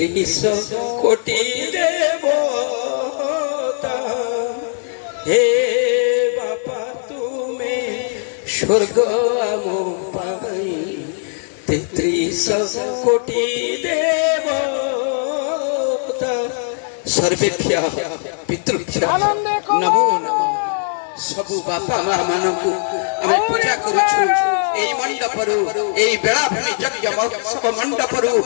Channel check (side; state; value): right; silent; 59 dB below the other